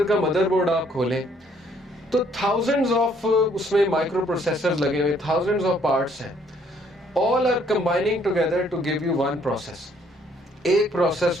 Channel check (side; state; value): both; normal; correlation 0.65